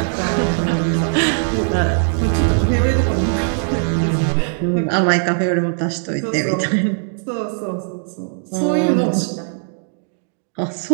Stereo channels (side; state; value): left; silent; digital silence